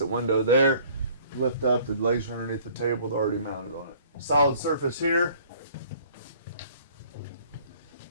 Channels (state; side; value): inverted; both; correlation -0.55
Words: window there. Lift up, the legs are underneath the table, they're already mounted on it. Solid surface here.